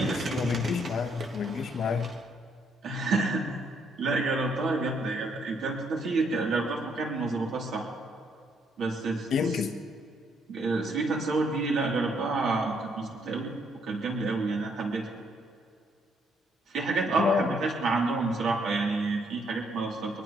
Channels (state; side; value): normal; both; correlation 0.71